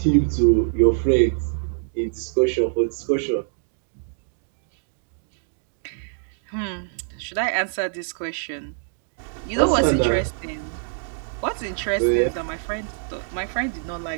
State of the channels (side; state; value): left; silent; digital silence